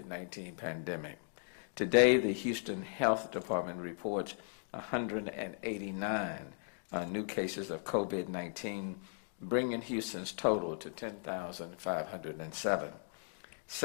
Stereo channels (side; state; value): right; silent; digital silence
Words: pandemic. Today, the Houston Health Department reports 189 new cases of COVID-19, bringing Houston's total to 10,507.